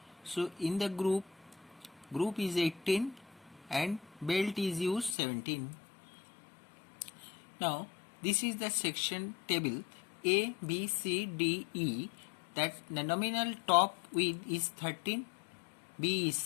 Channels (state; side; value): drops out; right; at 5.2 s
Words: So in the group is 18 and belt is used 17. Now this is the section table A, B, C, D, E. That the nominal top width is 13, B is